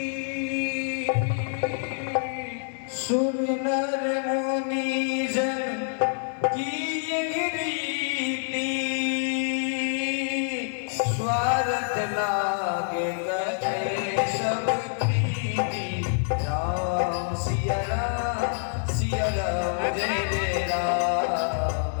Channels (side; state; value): right; silent; 57 dB below the other